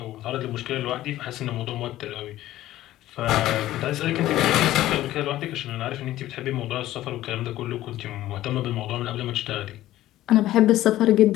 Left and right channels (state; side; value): quieter; right; 14.7 dB